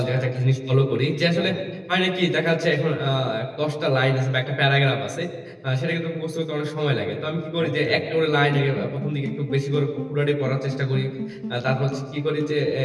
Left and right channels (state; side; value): identical; both; correlation 1.00